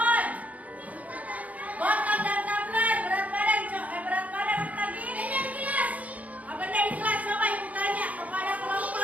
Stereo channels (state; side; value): late; left; 0.072 ms